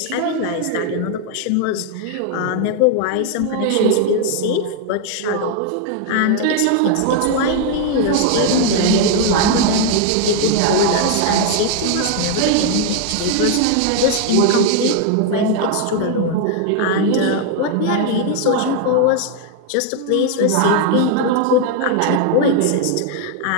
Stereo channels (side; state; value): both; different; correlation 0.00